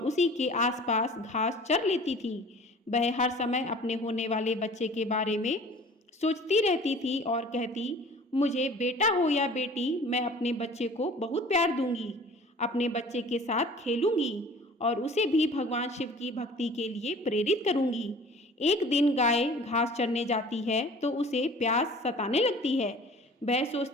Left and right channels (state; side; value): normal; both; correlation 0.46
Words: उसी के आसपास घास चर लेती थी। वह हर समय अपने होने वाले बच्चे के बारे में सोचती रहती थी और कहती, मुझे बेटा हो या बेटी, मैं अपने बच्चे को बहुत प्यार दूंगी, अपने बच्चे के साथ खेलूंगी और उसे भी भगवान शिव की भक्ति के लिए प्रेरित करूंगी। एक दिन गाय घास चरने जाती है तो उसे प्यास सताने लगती है। वह